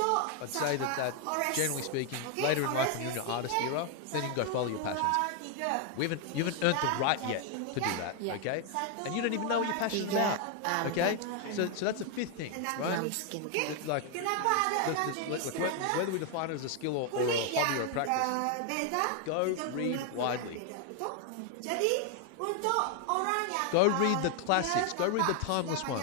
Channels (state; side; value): different; both; correlation 0.00